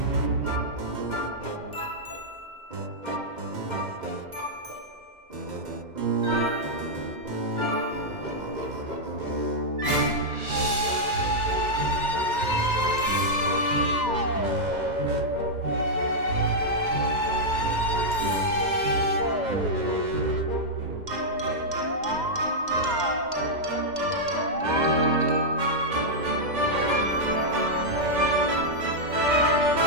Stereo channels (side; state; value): left; late; 2.1 ms